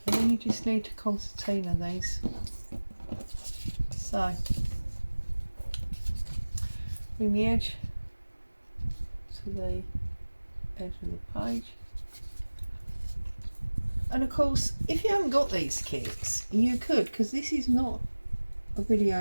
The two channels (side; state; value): both; inverted; correlation -1.00